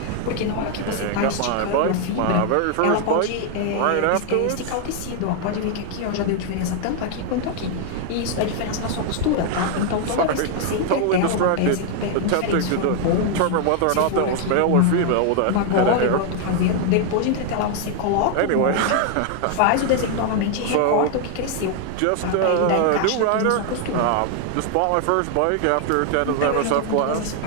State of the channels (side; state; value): both; different; correlation 0.00